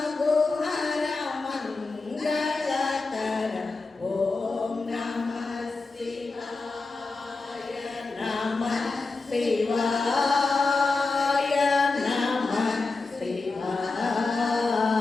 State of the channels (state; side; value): quieter; right; 3.8 dB